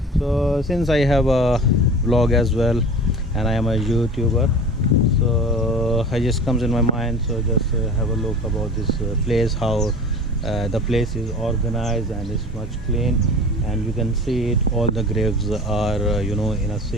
So since I have a vlog as well and I am a YouTuber, so I just comes in my mind, so just have a look about this place, how the place is organized and it's much clean, and you can see it, all the graves are in a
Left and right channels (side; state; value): both; normal; correlation 0.38